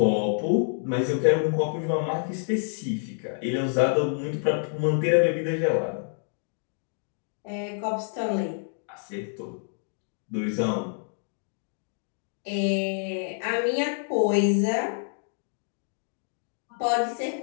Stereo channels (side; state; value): right; silent; digital silence